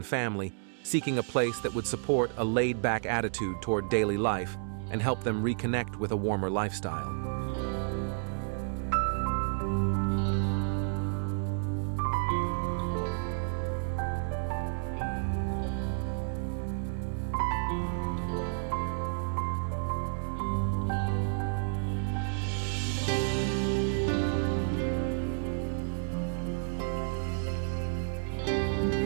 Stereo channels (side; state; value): left; silent; digital silence